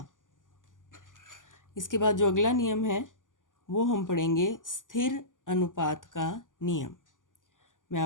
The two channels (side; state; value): right; late; 0.88 ms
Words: इसके बाद जो अगला नियम है वो हम पढ़ेंगे स्थिर अनुपात का नियम। मैं